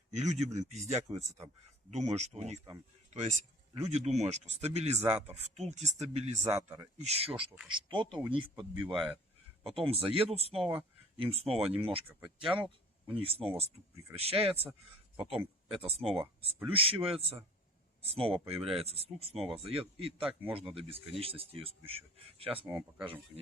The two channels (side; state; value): both; normal; correlation 0.47